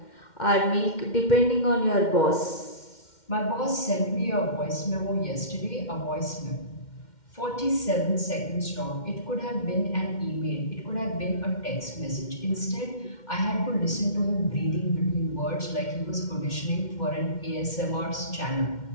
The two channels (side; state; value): right; late; 2.1 ms